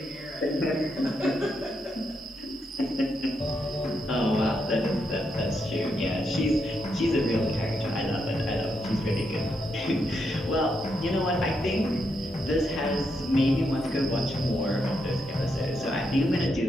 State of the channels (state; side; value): normal; both; correlation 0.81